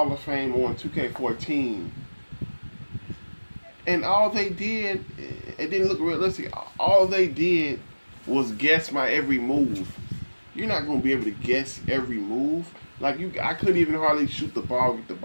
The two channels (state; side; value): inverted; both; correlation -1.00